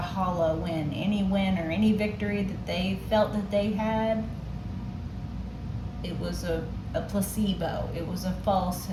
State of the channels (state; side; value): identical; both; correlation 1.00